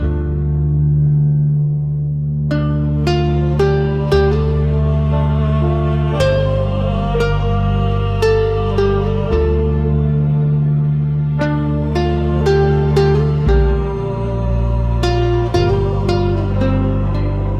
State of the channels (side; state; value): both; identical; correlation 1.00